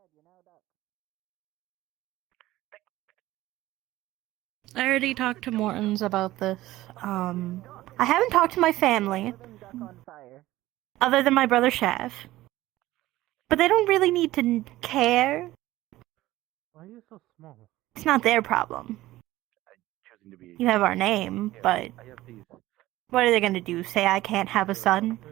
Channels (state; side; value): quieter; left; 16.6 dB